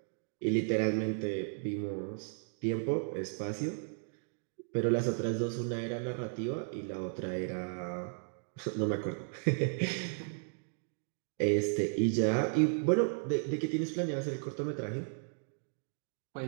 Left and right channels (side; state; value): left; silent; digital silence